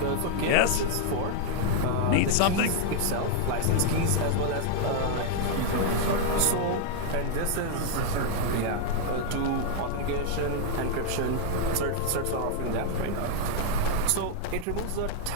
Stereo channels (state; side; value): different; both; correlation 0.00